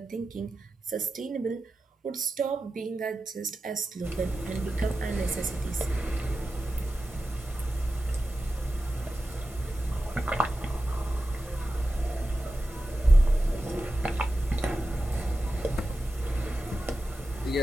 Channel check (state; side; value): normal; both; correlation 0.92